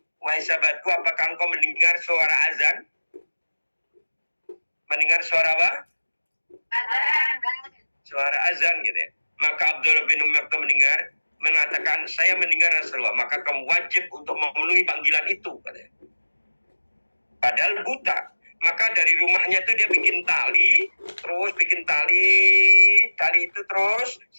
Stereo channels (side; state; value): both; inverted; correlation -1.00